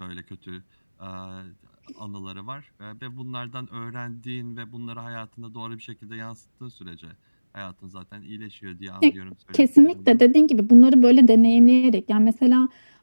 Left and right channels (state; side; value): inverted; both; correlation -1.00